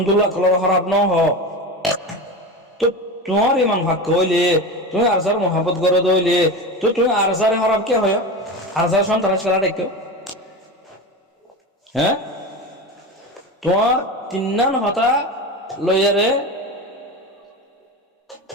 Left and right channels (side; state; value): both; normal; correlation 0.25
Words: কলর খারাপ ন হ তো তোমার ইমান ভাগ্য হইলে তুমি আরসার মহাব্বত করে দইলে তো তুমি আরসারে খারাপ কে হয় আরসার সন্ত্রাস খেলা দেখো হ্যাঁ তোমার তিন্নান হতা লইয়ারে